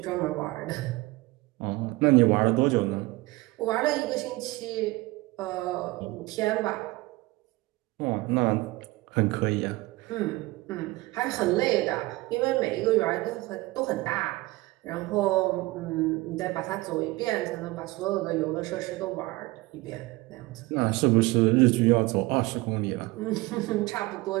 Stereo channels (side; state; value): left; quieter; 21.2 dB